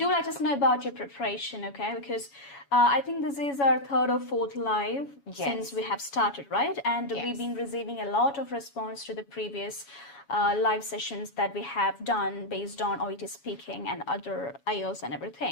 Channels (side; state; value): right; late; 7.1 ms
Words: let us know about your preparation, okay? Because I think this is our third or fourth live since we have started, right? And we've been receiving a lot of response to the previous live sessions that we have done based on OET speaking and other IELTS and